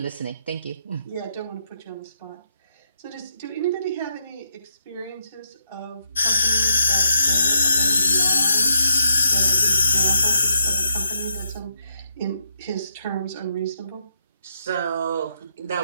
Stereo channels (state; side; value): inverted; both; correlation -0.79